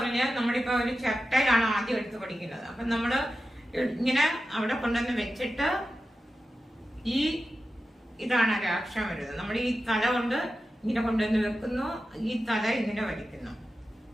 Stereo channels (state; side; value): normal; both; correlation 0.92